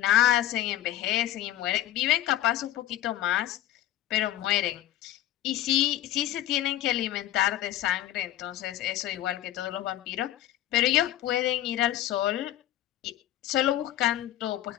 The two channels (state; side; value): quieter; right; 13.4 dB